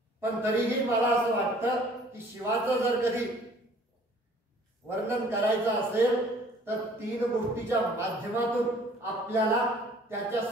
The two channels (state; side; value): normal; both; correlation 0.54